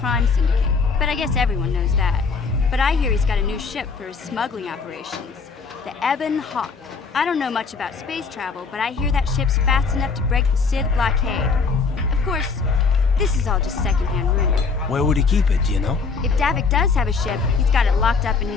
Syndicate, but I guess everyone knows that. But I hear he's got a new ship for his smuggling operations, the Ebon Hawk. I don't know much about space travel, but I hear that ship's fast enough to break the Sith blockade. Of course, this is all just secondhand rumor. Where would he keep it, do you know? If Davik does have a ship, he's got it locked up in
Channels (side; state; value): right; quieter; 4.9 dB